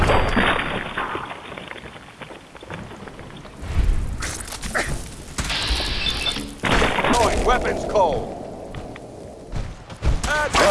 Going weapons cold!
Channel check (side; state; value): both; identical; correlation 1.00